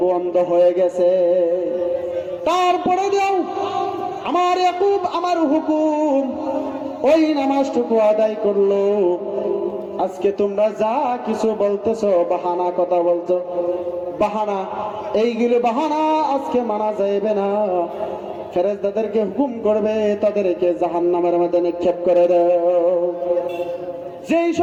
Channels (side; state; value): both; identical; correlation 1.00